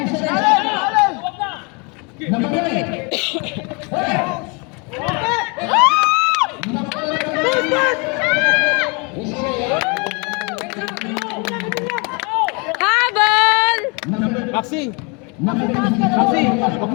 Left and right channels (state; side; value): quieter; right; 31.8 dB